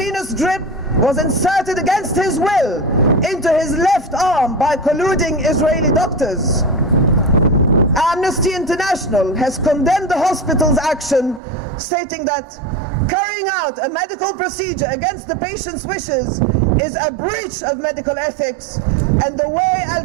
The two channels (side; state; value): left; drops out; at 11.4 s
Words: drip was inserted against his will into his left arm by colluding Israeli doctors. Amnesty International has condemned the hospital's action, stating that carrying out a medical procedure against the patient's wishes is a breach of medical ethics, and the way